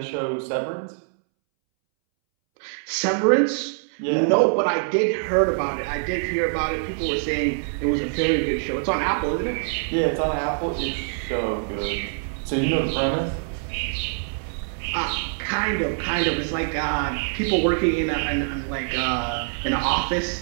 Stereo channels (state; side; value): silent; left; 62 dB below the other